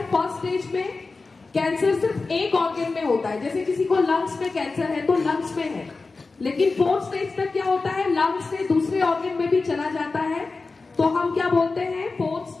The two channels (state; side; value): quieter; right; 3.9 dB